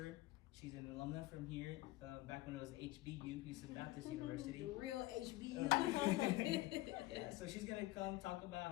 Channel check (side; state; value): right; quieter; 18.3 dB